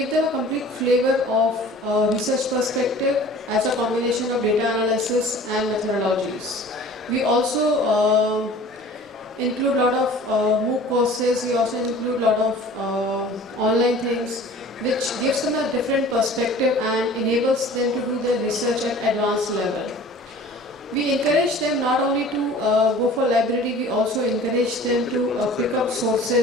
them a complete flavor of research perspective as a combination of data analysis and methodologies. We also include a lot of MOOC courses. We also include a lot of online things, which gives them a different perspective and enables them to do their research at advanced level. We encourage them not only to go for library, we also encourage them to pick up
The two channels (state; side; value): normal; both; correlation 0.45